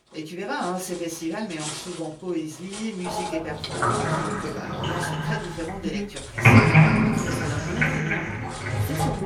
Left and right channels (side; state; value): both; identical; correlation 1.00